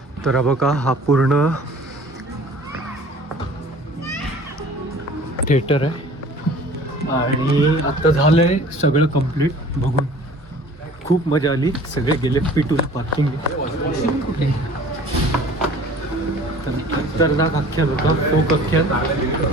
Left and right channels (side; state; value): both; normal; correlation 0.47